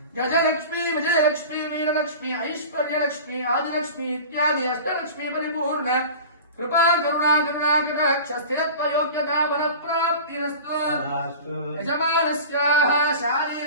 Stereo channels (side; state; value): both; inverted; correlation -0.36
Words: गजलक्ष्मी विजयलक्ष्मी वीरलक्ष्मी ऐश्वर्यलक्ष्मी आदिलक्ष्मी इत्यादि अष्टलक्ष्मी परिपूर्ण कृपा करुणा कटाक्ष स्थिरत्व योग्यता बलप्राप्तिरस्तु यजमानस्याः